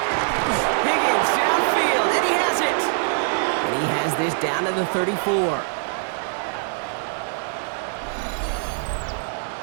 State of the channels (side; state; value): left; silent; digital silence